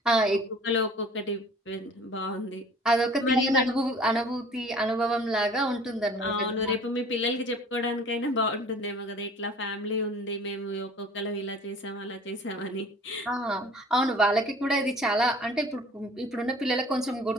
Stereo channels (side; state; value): both; normal; correlation 0.48